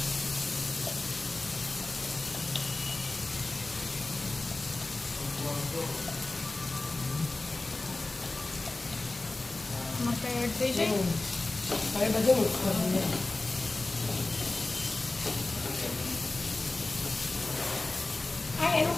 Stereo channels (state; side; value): quieter; right; 3.1 dB